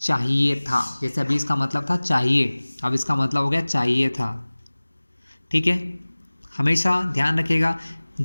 था, जैसे अभी इसका मतलब था चाहिए, अब इसका मतलब हो गया चाहिए था, ठीक है। हमेशा ध्यान रखिएगा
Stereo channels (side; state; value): both; inverted; correlation -1.00